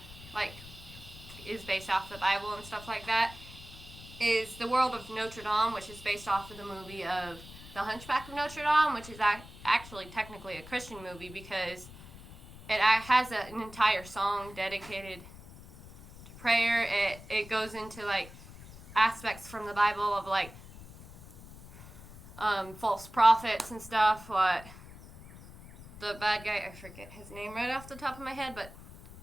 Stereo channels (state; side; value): noise; left; rumble, 17 dB below the sound